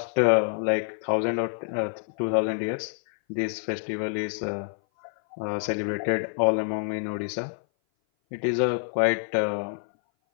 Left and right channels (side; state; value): right; silent; 57 dB below the other